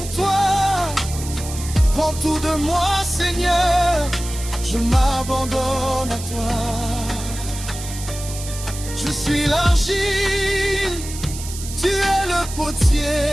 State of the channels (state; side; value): noise; right; hiss, 11 dB below the sound